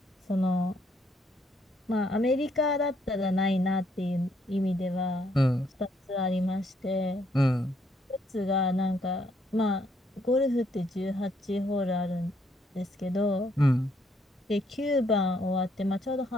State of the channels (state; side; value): normal; both; correlation 0.71